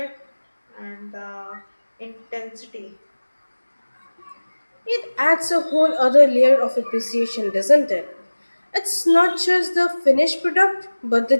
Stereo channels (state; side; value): inverted; both; correlation -1.00